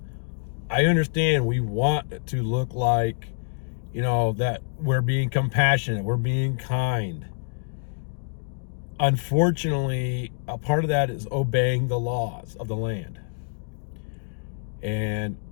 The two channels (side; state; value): right; silent; digital silence